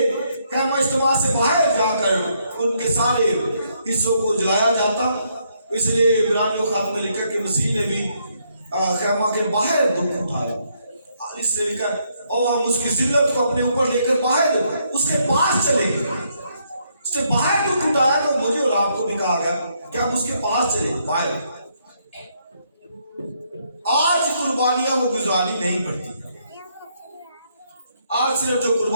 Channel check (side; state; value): both; inverted; correlation -0.73